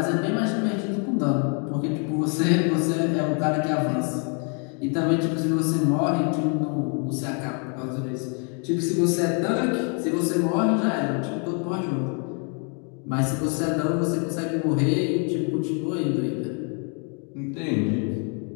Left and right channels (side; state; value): right; quieter; 39.1 dB